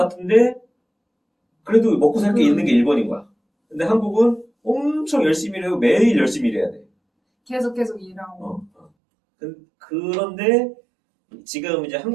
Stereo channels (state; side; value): drops out; left; at 8.9 s